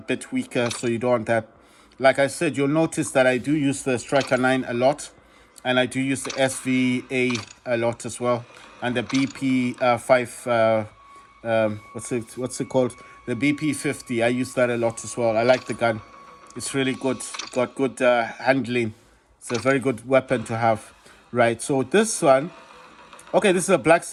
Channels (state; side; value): identical; both; correlation 1.00